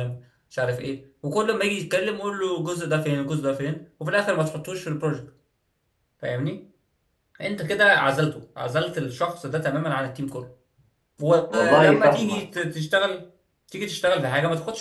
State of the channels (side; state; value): both; identical; correlation 1.00